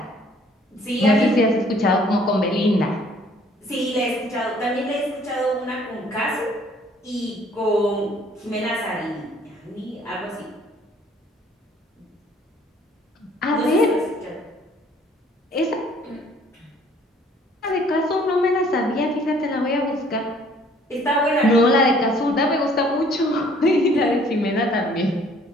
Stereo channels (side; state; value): both; normal; correlation 0.58